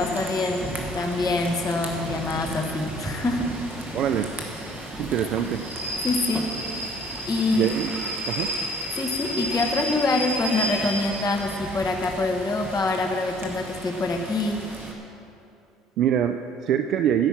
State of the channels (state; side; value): normal; both; correlation 0.55